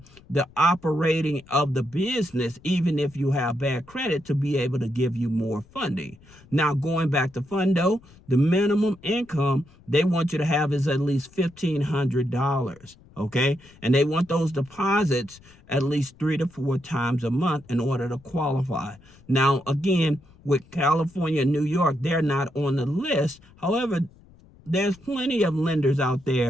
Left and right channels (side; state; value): left; noise; rumble, 26 dB below the sound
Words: the operating of the business, even if you have bad credit, to be able to give you more funding. Now, going back to Fundo, the minimum income they want you to have is at least $1,500. Okay, and they want those deposits at least 3 to 4 times a month in order to qualify. Now, again, with California and New York, they're not on the list. However, there's plenty of lenders out